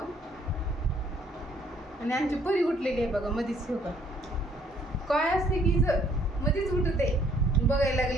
आणि आमची परी उठलेली आहे बघा मधीच. हो का काय असते की मध्येच उठते. बघायला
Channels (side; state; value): both; normal; correlation 0.63